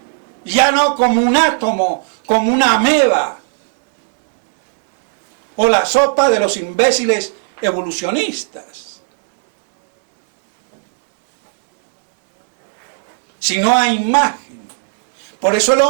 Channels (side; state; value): left; silent; digital silence